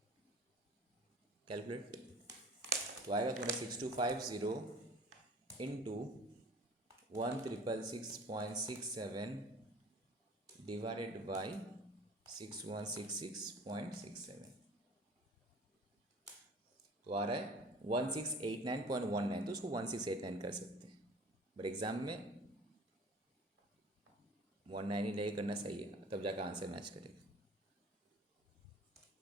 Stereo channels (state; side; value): normal; both; correlation 0.46